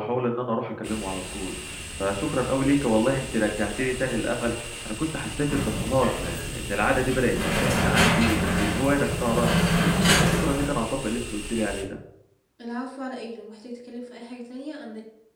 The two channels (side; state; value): both; identical; correlation 1.00